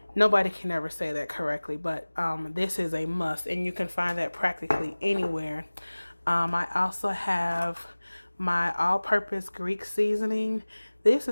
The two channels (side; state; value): both; inverted; correlation -1.00